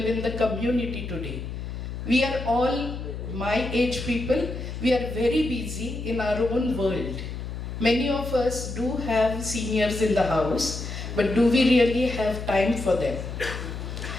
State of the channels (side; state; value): left; noise; hum, 7 dB below the sound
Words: in the community today? We are all my age people. We are very busy in our own world. Many of us do have seniors in the house, but do we really have time for them?